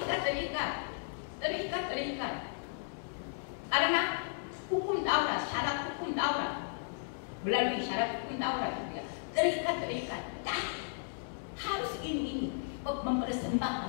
terikat. Karena hukum Taurat, syarat hukum Taurat, melalui syarat hukum Taurat juga terikat. Harus ini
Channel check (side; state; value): right; silent; digital silence